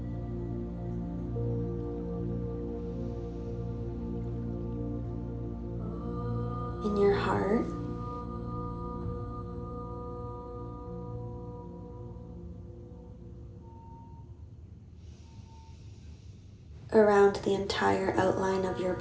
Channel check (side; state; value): both; identical; correlation 1.00